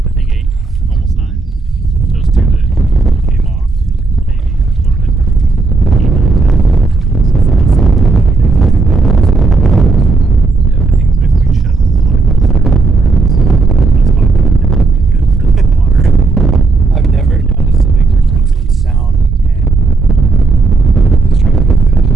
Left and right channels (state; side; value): quieter; left; 3.8 dB